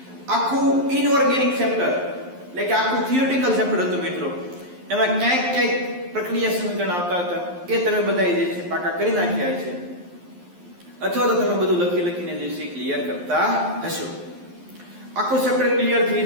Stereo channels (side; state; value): left; late; 11 ms